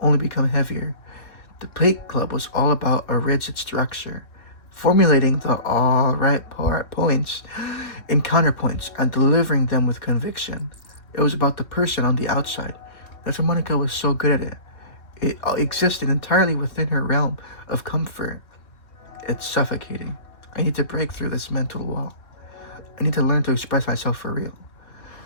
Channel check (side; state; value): right; late; 2.9 ms